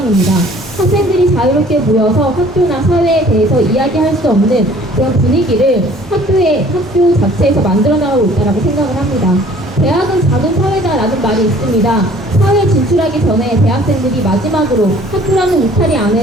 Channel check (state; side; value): normal; both; correlation 0.53